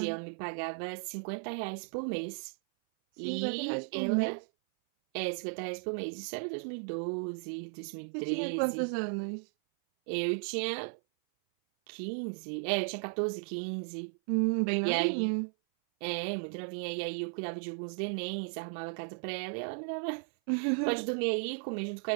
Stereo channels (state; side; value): silent; left; 54 dB below the other